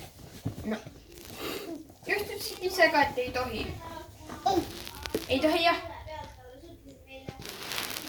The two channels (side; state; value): both; identical; correlation 1.00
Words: No. Just ütlesid ise ka, et ei tohi. Ei tohi, jah.